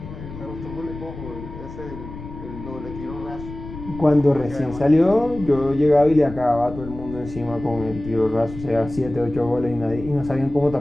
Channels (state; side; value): noise; left; rumble, 12 dB below the sound